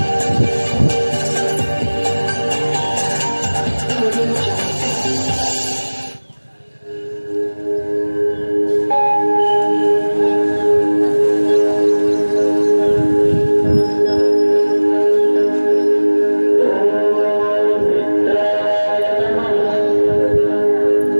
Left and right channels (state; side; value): inverted; both; correlation -1.00